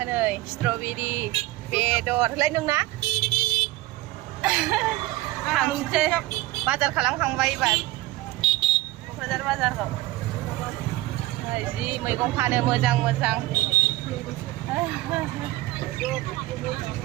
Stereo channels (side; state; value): left; quieter; 18.3 dB